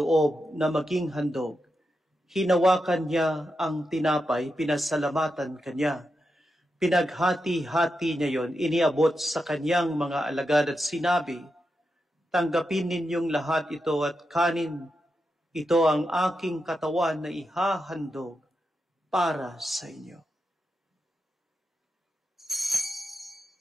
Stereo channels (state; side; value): normal; both; correlation 0.87